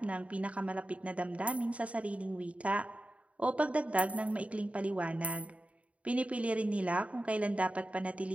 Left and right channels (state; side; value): late; left; 0.065 ms